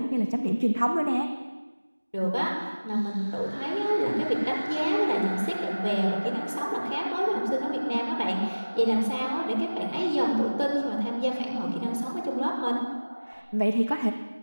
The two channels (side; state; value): both; inverted; correlation -1.00